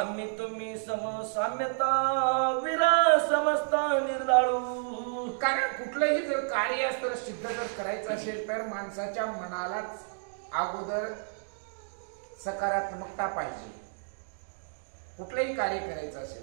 तुम्ही समसाम्यता विरा समजता निर्दाळू. कारण कुठलंही जर कार्य असतं सिद्ध जर करायचं असेल तर माणसाच्या मनालाच अगोदर सकारात्मकता पाहिजे. कुठलंही कार्य करायचं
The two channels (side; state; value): left; silent; digital silence